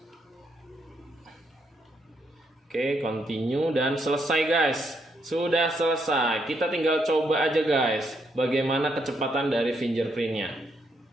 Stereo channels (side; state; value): both; normal; correlation 0.76